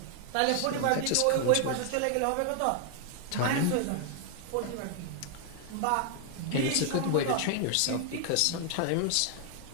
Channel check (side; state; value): both; different; correlation 0.00